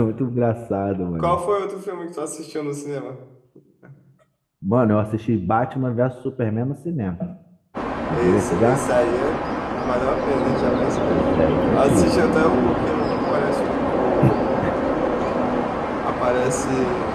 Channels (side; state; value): both; identical; correlation 1.00